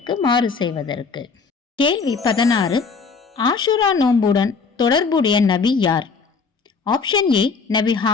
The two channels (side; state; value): right; quieter; 5.0 dB